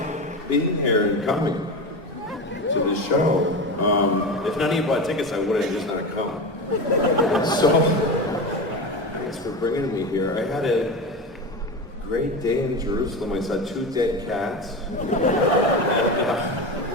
being here and coming to the show. If none of you bought tickets, I would have just not come. So, thanks for bringing me here. I had a great day in Jerusalem. I saw 2 dead cats.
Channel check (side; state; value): both; normal; correlation 0.23